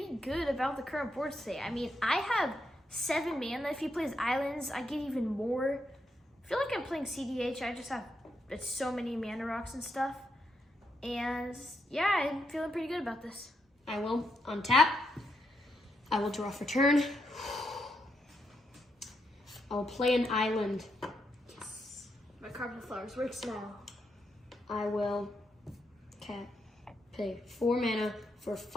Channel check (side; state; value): both; normal; correlation 0.81